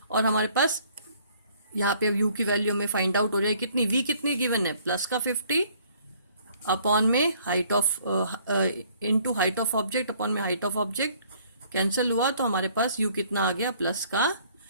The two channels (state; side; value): inverted; both; correlation -0.60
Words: और हमारे पास यहाँ पे u की वैल्यू में फाइंड आउट हो रही है कितनी, v कितनी गिवन है, प्लस का 50 अपॉन में height of into height of object upon में हाइट ऑफ ऑब्जेक्ट, कैंसिल हुआ तो हमारे पास u कितना आ गया, प्लस का